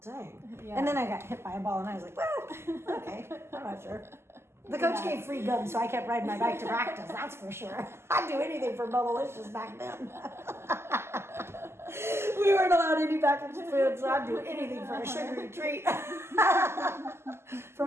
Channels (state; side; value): late; left; 0.12 ms